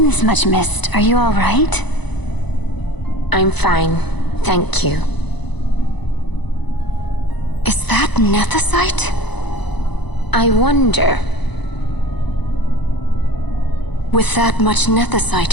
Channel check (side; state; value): right; late; 0.99 ms